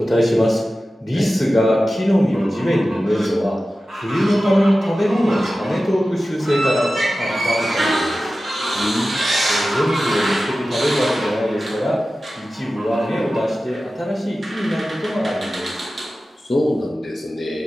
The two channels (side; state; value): both; normal; correlation 0.95